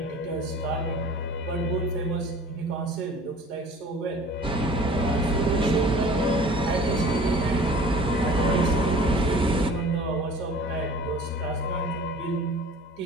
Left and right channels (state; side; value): normal; both; correlation 0.45